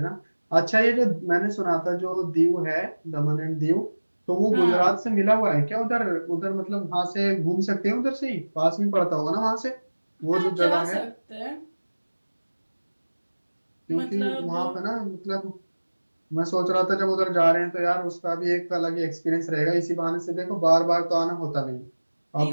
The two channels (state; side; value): inverted; both; correlation -1.00